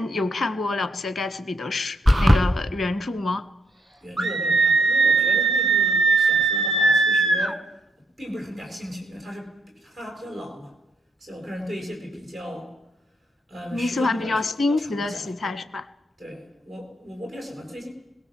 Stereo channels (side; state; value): both; normal; correlation 0.75